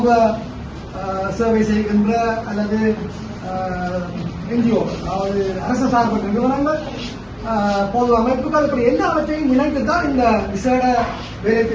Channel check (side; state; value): both; identical; correlation 1.00